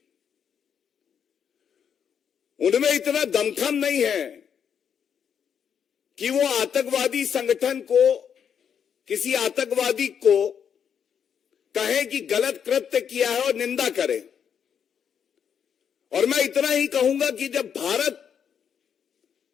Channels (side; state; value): right; quieter; 7.8 dB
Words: उनमें इतना दमखम नहीं है कि वो आतंकवादी संगठन को, किसी आतंकवादी को कहें कि गलत कृत्य किया है और निंदा करें। और मैं इतना ही कहूंगा कि जब भारत